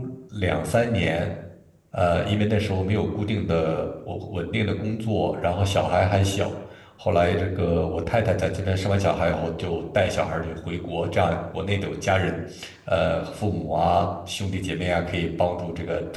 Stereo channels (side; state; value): both; identical; correlation 1.00